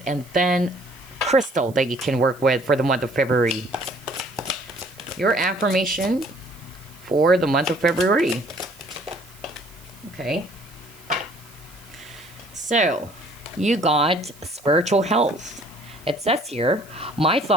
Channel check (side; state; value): right; noise; hiss, 24 dB below the sound